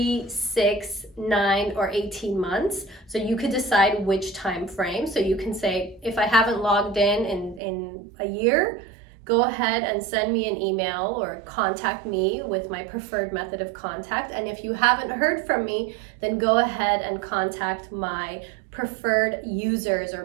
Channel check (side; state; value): left; drops out; at 7.6 s